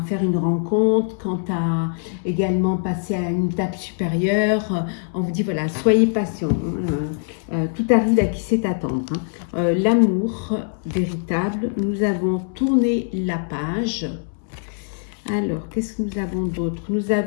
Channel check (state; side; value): silent; right; 64 dB below the other